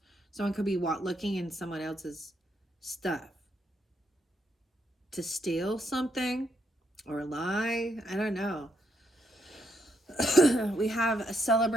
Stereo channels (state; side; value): normal; both; correlation 0.77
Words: Someone could be looking in someone else's stuff to steal something or lie. I don't know. We have a